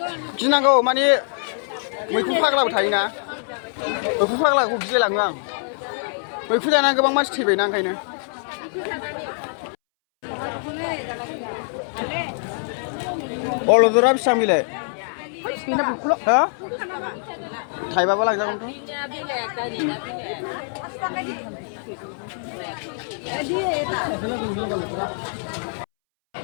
गिनांगौ माने मैखुन फाग्लाबो थायोना मैखुन फाग्लाखौ गिलायलाङो आं मैखुन जानानै गोबां मानसि थैबायना ओंखायनो अलदरा बेसेबां बेलाय हा थाइबाबो लांजागोनथ'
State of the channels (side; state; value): right; silent; 63 dB below the other